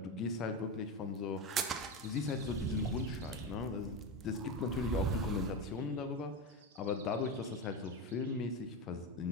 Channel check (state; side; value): normal; both; correlation 0.17